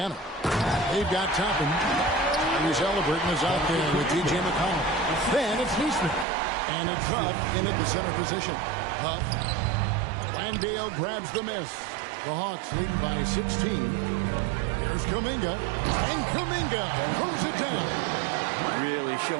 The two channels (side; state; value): left; drops out; at 6.2 s